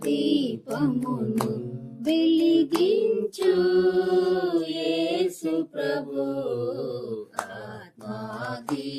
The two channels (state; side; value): identical; both; correlation 1.00